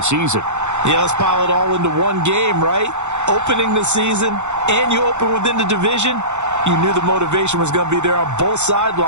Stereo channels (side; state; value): left; late; 0.83 ms